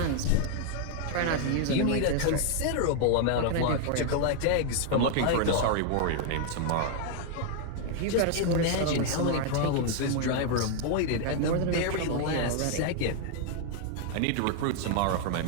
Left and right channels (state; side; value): different; both; correlation 0.00